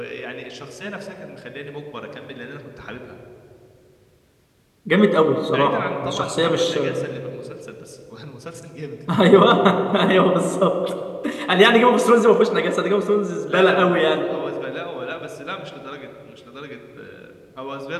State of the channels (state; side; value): identical; both; correlation 1.00